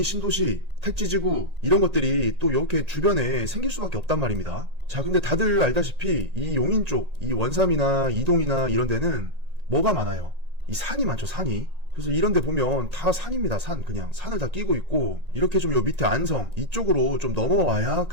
신도시, 택지지구 이런 것들이 또 이렇게 주변에 생길 수밖에 없단 말입니다. 자, 근데 다들 알다시피 이 용인 쪽, 이 원삼이나 이동이나 이런 데는 뭐가 많아요? 이 산이 많죠, 산이. 그래서 이런 데 보면 다 산입니다. 그냥 산을 다 끼고 있고, 이렇게 좀 요 밑에 안성 이쪽으로 좀 넘어와야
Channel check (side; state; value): left; late; 1.8 ms